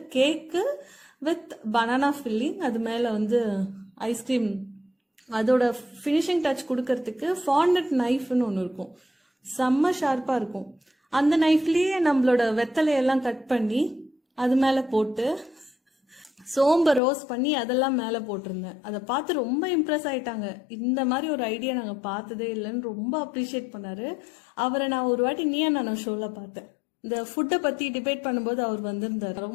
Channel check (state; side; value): drops out; right; at 17.0 s